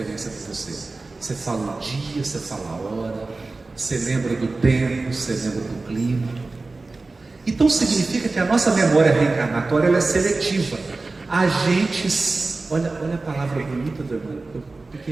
para você? Você fala o dia, você fala a hora, você lembra do tempo, você lembra do clima. Então significa que a nossa memória reencarnatória ela é seletiva. A gente, olha a palavra bonita do irmão,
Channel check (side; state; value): left; quieter; 3.5 dB